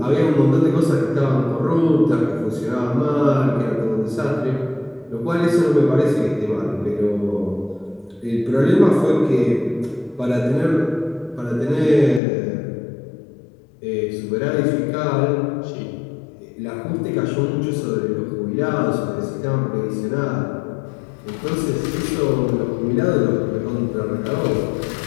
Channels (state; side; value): drops out; right; at 12.2 s